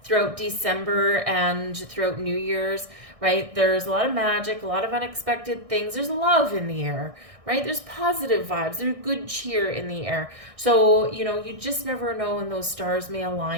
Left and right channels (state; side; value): late; left; 1.6 ms